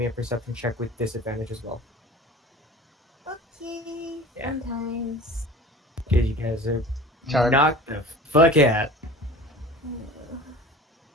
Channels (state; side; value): normal; both; correlation 0.40